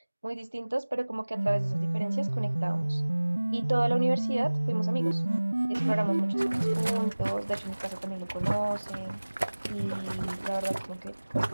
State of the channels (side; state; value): both; inverted; correlation -1.00